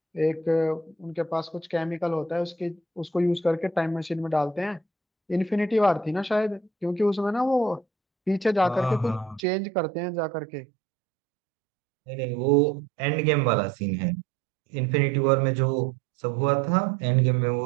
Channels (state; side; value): drops out; left; at 9.4 s